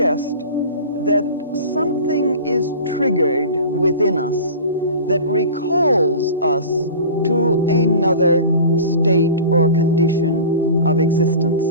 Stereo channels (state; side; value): inverted; both; correlation -0.37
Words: that something is triggered within us that recalls us to another state or condition of existence,